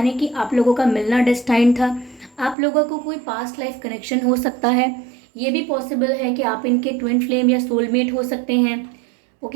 कि आप लोगों का मिलना डेस्टाइन था। आप लोगों को कोई पास्ट लाइफ कनेक्शन हो सकता है। ये भी पॉसिबल है कि आप इनके ट्विन फ्लेम या सोलमेट हो सकते हैं।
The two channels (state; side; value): drops out; left; at 2.6 s